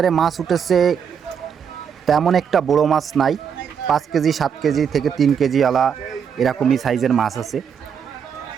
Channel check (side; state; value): left; quieter; 7.4 dB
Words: মাছ উঠেছে, তেমন একটা বড় মাছ নাই, 5 কেজি 7 কেজি থেকে 3 কেজি আলা এরকমই সাইজের মাছ আছে।